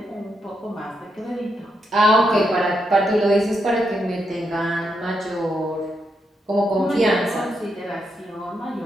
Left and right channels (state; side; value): normal; both; correlation 0.82